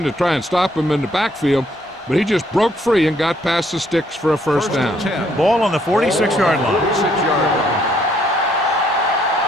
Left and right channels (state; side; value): normal; both; correlation 0.68